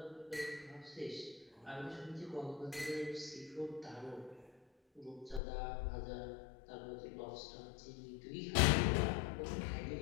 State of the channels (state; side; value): drops out; right; at 5.4 s